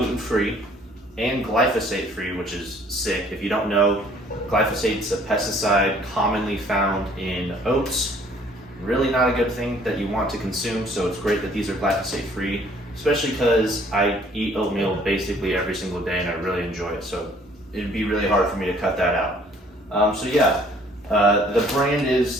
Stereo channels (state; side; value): normal; both; correlation 0.58